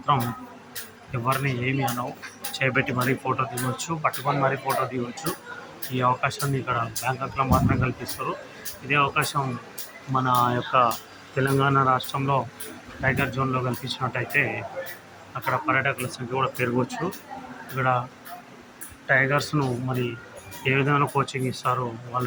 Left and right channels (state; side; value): identical; both; correlation 1.00